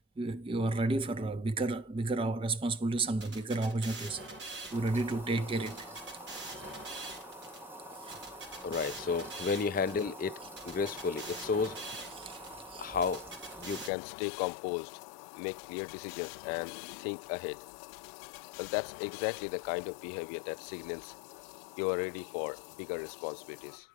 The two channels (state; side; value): drops out; right; at 13.9 s